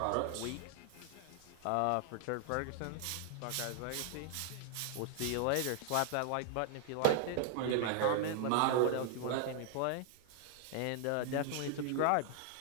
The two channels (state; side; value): different; both; correlation 0.00